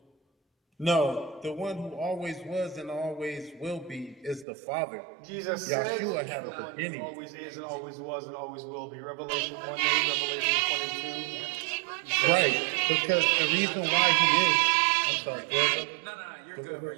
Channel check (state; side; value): drops out; left; at 4.5 s